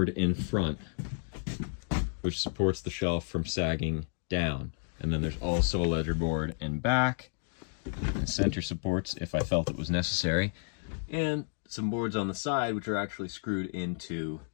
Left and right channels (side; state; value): right; silent; digital silence